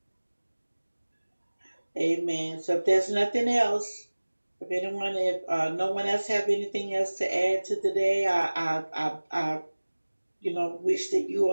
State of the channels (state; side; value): inverted; both; correlation -1.00